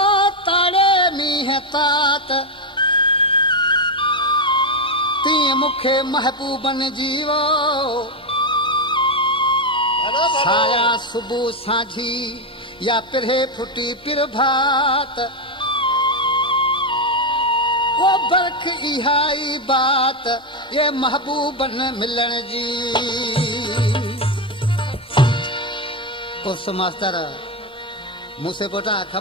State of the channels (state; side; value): normal; both; correlation 0.07